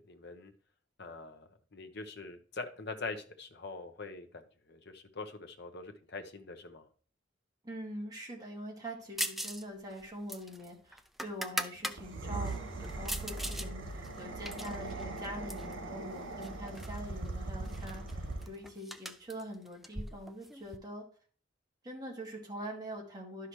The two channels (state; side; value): normal; both; correlation 0.50